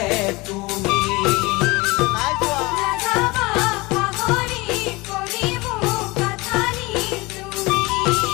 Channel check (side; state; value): right; quieter; 23.2 dB